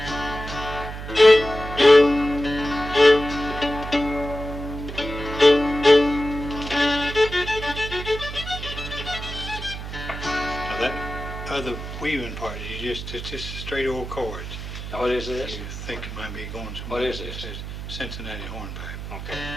Now that other weaving part, it's just straight old chords. What is this? You think it might be going somewhere. What is It this? says Cincinnati Hornpipe. Okay.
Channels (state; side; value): noise; right; hum, 8 dB below the sound